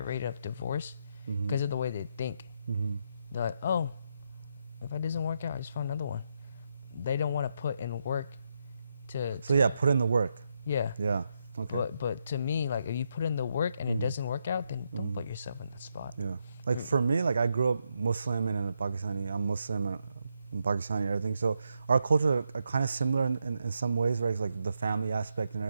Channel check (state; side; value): inverted; both; correlation -0.81